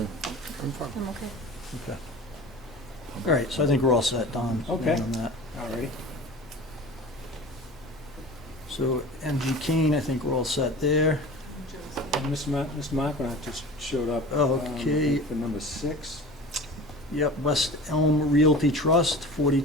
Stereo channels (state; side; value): normal; both; correlation 0.37